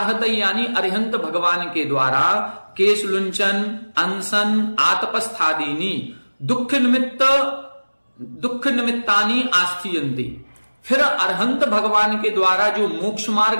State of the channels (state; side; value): inverted; both; correlation -1.00